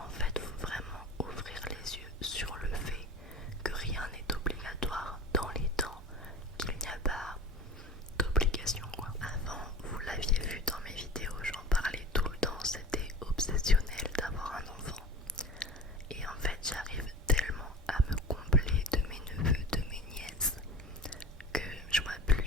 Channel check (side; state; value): both; normal; correlation 0.36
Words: fait, faut vraiment ouvrir les yeux sur le fait que rien n'est obligatoire dans les temps, qu'il n'y a pas d'obligation quoi. Avant, vous l'aviez vu dans mes vidéos, j'en parlais tout le temps, c'était obsessionnel d'avoir un enfant. Et en fait, j'arrive tellement à me combler de mes neveux, de mes nièces, que je vois